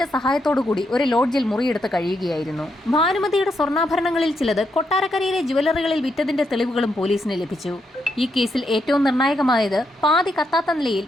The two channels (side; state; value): both; normal; correlation 0.80